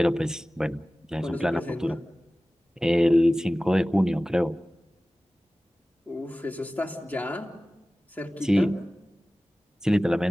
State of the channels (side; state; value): both; normal; correlation 0.97